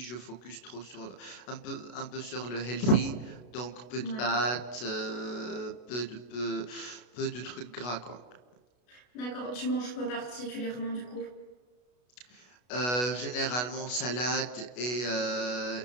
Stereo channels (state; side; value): late; right; 32 ms